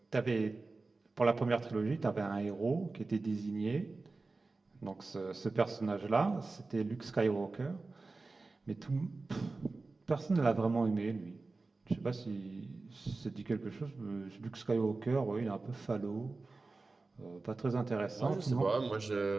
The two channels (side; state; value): left; quieter; 3.6 dB